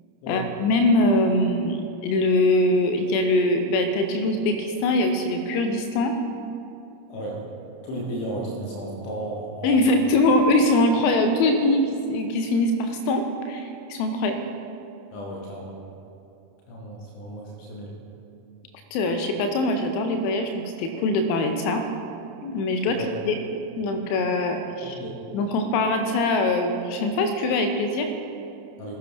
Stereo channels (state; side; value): late; right; 31 ms